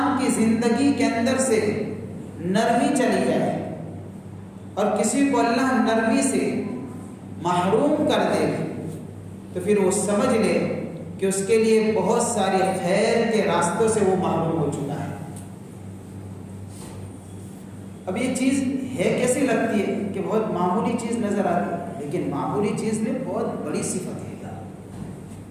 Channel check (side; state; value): both; identical; correlation 1.00